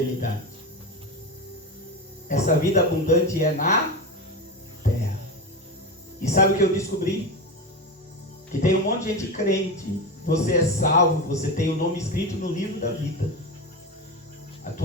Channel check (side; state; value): both; normal; correlation 0.20